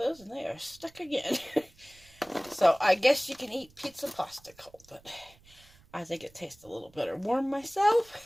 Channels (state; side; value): noise; right; rumble, 27 dB below the sound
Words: and they are stuck again. So I guess you can eat pizza pasta cold, but I think it tastes a little better warm